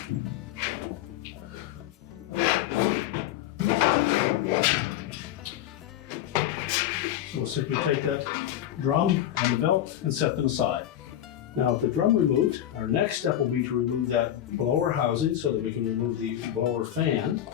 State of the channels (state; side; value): quieter; right; 11.8 dB